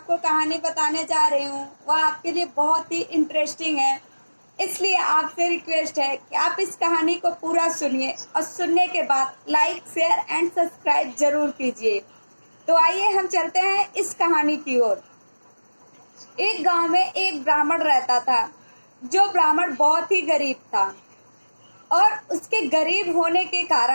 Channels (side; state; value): both; inverted; correlation -1.00